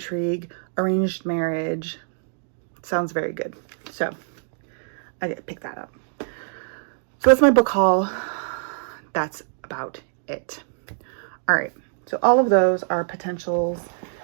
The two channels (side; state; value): left; silent; digital silence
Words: arranged marriage. Sounds very good. So I did pick that up. So that's my book haul. That's about it. All right. So all of those are potentials